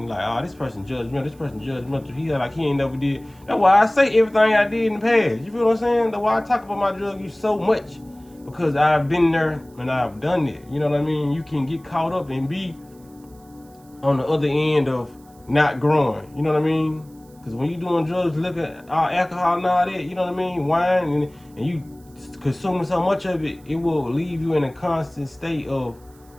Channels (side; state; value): right; noise; hiss, 29 dB below the sound